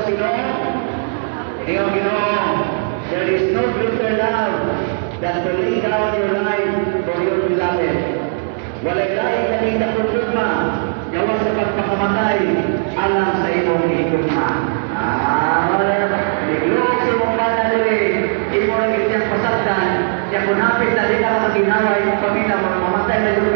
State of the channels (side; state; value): left; silent; 65 dB below the other